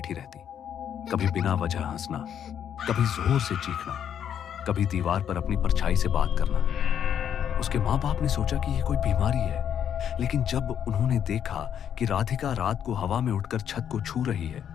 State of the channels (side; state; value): right; quieter; 9.0 dB